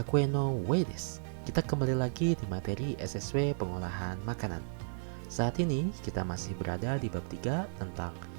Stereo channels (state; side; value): silent; left; digital silence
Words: no Wei desu. Kita kembali lagi di materi SSW pengolahan makanan. Saat ini kita masih berada di bab 3 tentang